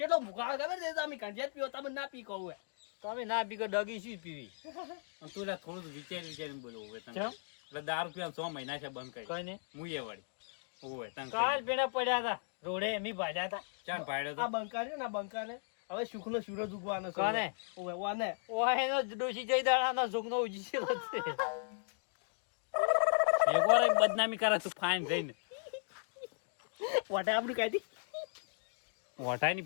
ભૂખા ખબર છે તમે કંજેટ પીઓ તમે ના પી કહું હે તમે ના પી ડગી શું પીવી અને તું લે થોડું વિચારીને બોલવું હોય તને કેમ? એટલે દારૂ પીવાનું 6 મહિના છે બંધ કરી કઈ ને હું એ વળી ઓય તને કાલ પેલા પડ્યા હતા રોડે એમી ભાજ્યા હતા ચાલ પાડ્યો આ તો બંકા છે ને આ બંકા ને હવે સુખનો સૂરજ ઉગવાનો છે કોને? ઓવે ઓને ઓય એનો ડોશી જઈ દાડાનો સુખનો ઉજી છે એકવાર એક બદનામી કરે તું ફાઈન જઈને વાટા આપણી કાઢી વટાઈની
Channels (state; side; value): silent; right; digital silence